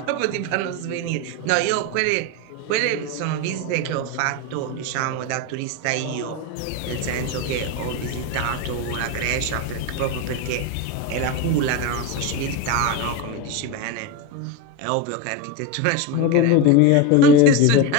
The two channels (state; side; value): different; both; correlation 0.04